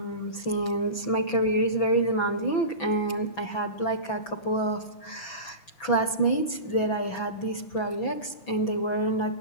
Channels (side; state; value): right; late; 6.0 ms